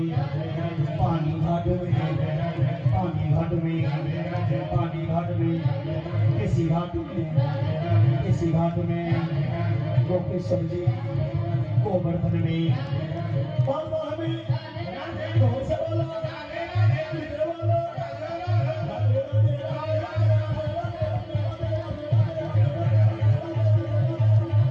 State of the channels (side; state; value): both; identical; correlation 1.00